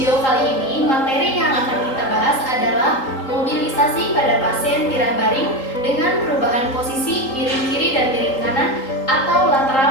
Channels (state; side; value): late; right; 3.8 ms